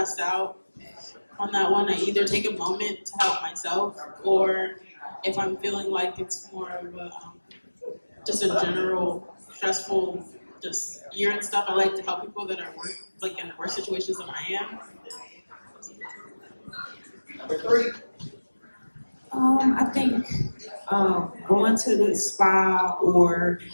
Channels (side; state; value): both; inverted; correlation -1.00